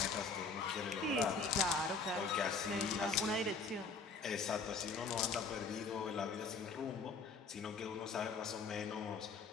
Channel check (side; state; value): right; quieter; 4.4 dB